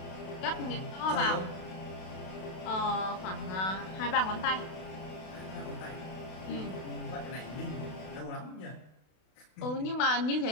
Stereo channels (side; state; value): right; late; 32 ms